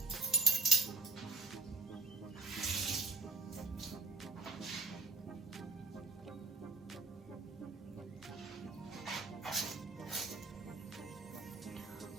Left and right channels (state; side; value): quieter; left; 3.8 dB